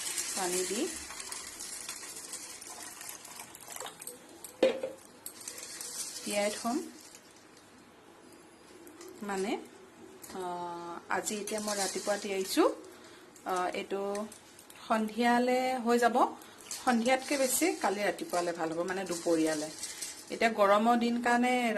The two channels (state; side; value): identical; both; correlation 1.00